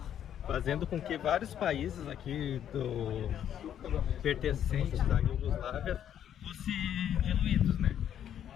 fazendo com que vários países aqui pertencentes da Iugoslávia fossem diluídos, né?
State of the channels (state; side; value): quieter; right; 9.9 dB